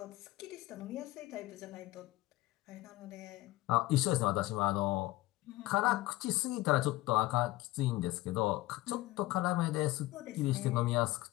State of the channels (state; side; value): quieter; right; 18.2 dB